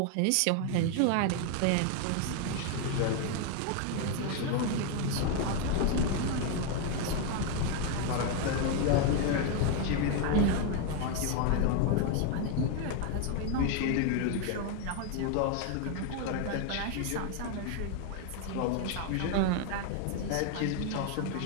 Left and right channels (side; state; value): both; different; correlation 0.01